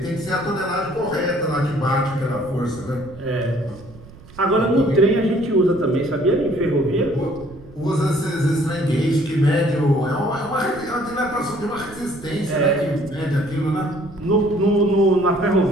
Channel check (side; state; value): right; noise; rumble, 20 dB below the sound